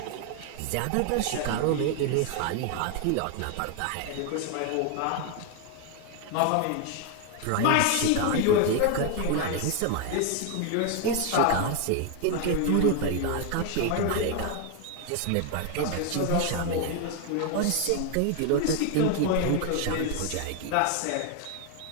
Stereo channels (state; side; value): different; both; correlation 0.01